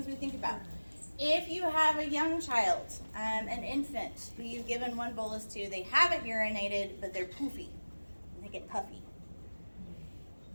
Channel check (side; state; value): both; inverted; correlation -1.00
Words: we think about. If you have a young child, an infant, who you've given 1 bolus to, they haven't urinated, but they're poofy, and they get puffy.